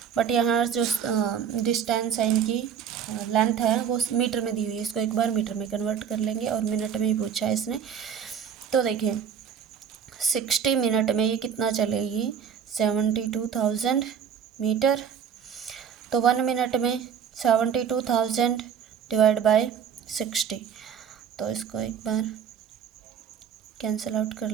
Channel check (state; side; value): quieter; left; 7.8 dB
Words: बट यहाँ जो डिस्टेंस है, इनकी लेंथ है, वो मीटर में दी हुई है। इसको एक बार मीटर में कन्वर्ट कर लेंगे और मिनट में ही पूछा है इसने। तो देखिए 60 मिनट में ये कितना चलेगी, 72,000 मीटर। तो 1 मिनट में 72,000 डिवाइड बाय 60। तो इसको एक बार कैंसिल आउट कर